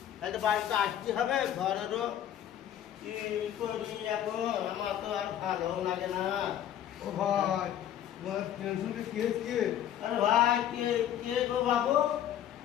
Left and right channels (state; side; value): quieter; right; 10.8 dB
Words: হয়তো বাড়িতে আসতে হবে ঘরেরও কি করি এখন আমার তো আর ভালো লাগে না। ও ভাই তোমার টেনশনটা কেস কে? আরে ভাই কে কে গো বাবু?